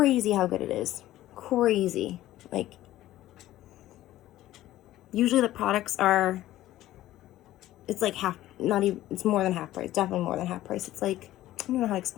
how good it is. Crazy. Like, usually the products are, it's like half, not even, it's more than half price. Definitely more than half price. It's like, I don't know how to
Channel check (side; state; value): right; quieter; 14.7 dB